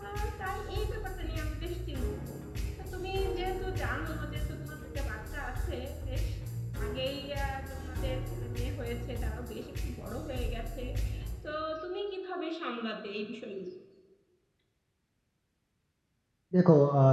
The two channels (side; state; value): both; identical; correlation 1.00